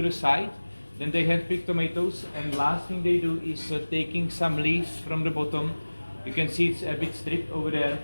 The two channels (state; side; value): inverted; both; correlation -1.00